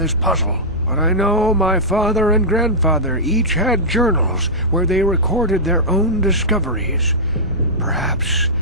puzzle. But I know my father and grandfather each had journals where they recorded their own discoveries. Perhaps,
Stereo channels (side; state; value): both; normal; correlation -0.12